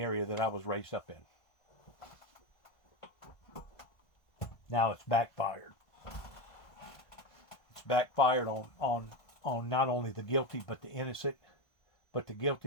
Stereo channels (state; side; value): late; right; 1.5 ms